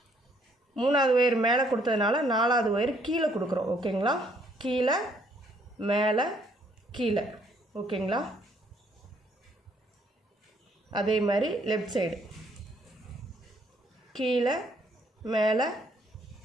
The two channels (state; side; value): normal; both; correlation 0.66